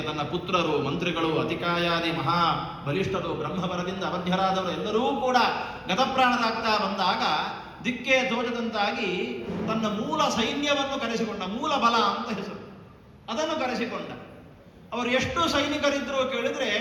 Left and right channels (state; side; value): identical; both; correlation 1.00